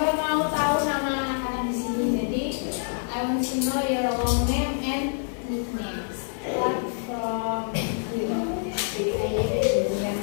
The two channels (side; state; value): right; silent; digital silence